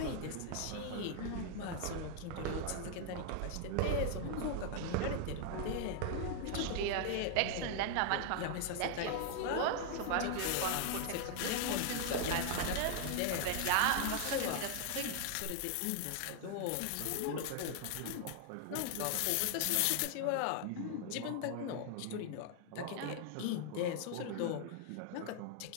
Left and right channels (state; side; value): different; both; correlation 0.00